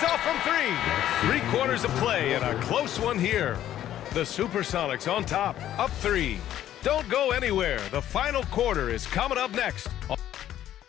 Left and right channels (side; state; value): right; quieter; 12.0 dB